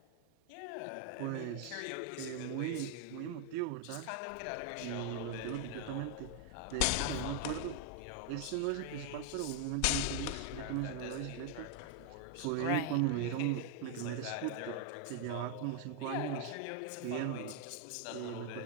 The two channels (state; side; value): different; both; correlation 0.00